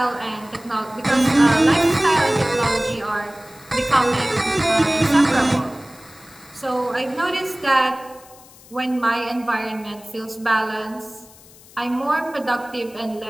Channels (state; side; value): noise; left; hiss, 23 dB below the sound